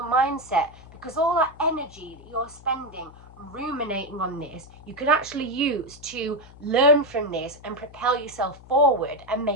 mindset, because all that energy that you're spending ruminating on this, you can actually use to learn from this and propel yourself forward and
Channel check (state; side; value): noise; left; hum, 20 dB below the sound